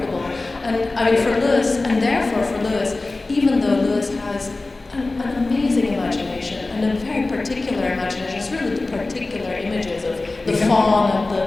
And for Lewis, and therefore for Lewis, even though Lewis has an amazing imagination, and a very particular imagination, it's really the particular images of the fawn and the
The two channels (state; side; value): quieter; right; 3.2 dB